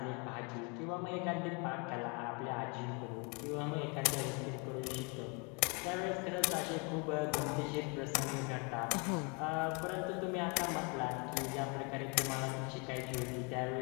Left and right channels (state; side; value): quieter; right; 32.8 dB